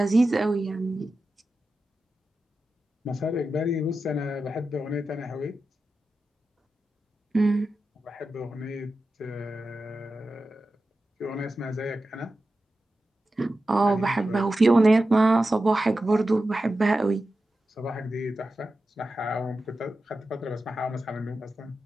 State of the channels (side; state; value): both; normal; correlation 0.92